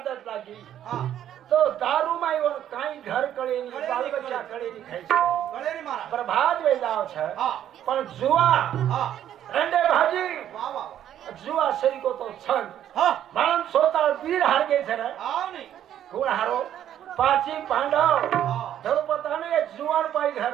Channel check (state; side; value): quieter; left; 10.8 dB